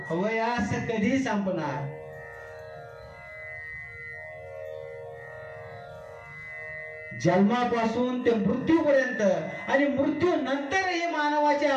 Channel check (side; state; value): both; identical; correlation 1.00